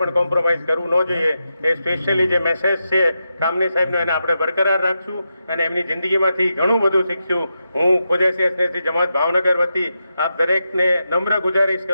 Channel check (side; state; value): both; inverted; correlation -0.87